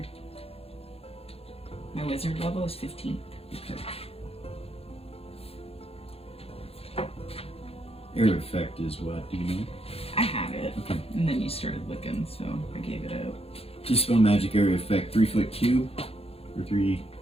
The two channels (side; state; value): right; late; 0.28 ms